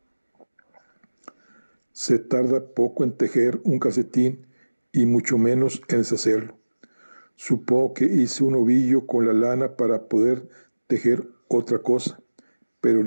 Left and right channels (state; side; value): inverted; both; correlation -1.00